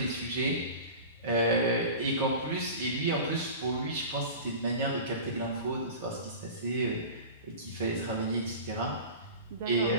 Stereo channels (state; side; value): inverted; both; correlation -0.34